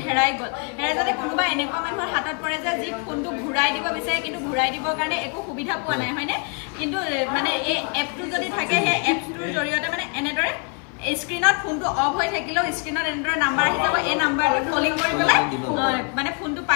হেৰাই গ'ল হেৰাই যাতে কোনোবাই এনেকুৱা মানুহৰ হাতত পৰে যে যি ফোনটো ঘূৰাই দিব বিচাৰে কিন্তু ঘূৰাই দিবৰ কাৰণে একো সুবিধা পোৱা নাই হয়নে কিন্তু মানে এই এপটো যদি থাকে সেই এপটোৰ জৰিয়তে মানে এনেদৰে স্ক্ৰীনত ফোনটো অফ হৈ থাকিলেও স্ক্ৰীনত এনেদৰে নাম্বাৰ আহি যাব এই নাম্বাৰটো কলিং কৰি পেলাই মানে ফোনটো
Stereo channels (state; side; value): quieter; right; 37.2 dB